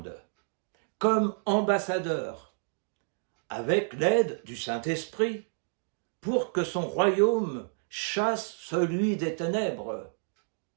comme ambassadeurs, avec l'aide du Saint-Esprit, pour que son royaume chasse celui des ténèbres.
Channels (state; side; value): silent; left; digital silence